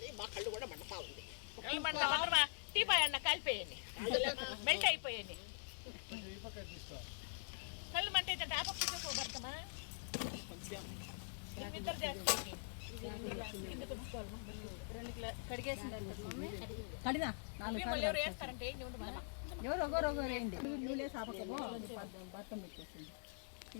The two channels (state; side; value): silent; right; digital silence